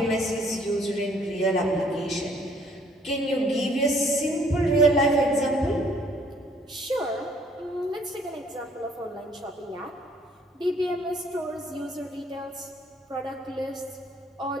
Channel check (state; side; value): normal; both; correlation 0.61